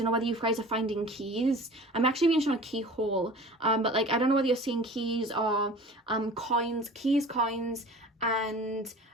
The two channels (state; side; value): normal; both; correlation 0.41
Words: know whether you guys are finding keys. I'm actually being shown a keyhole, but like, I don't know whether you're seeing keys or coins, and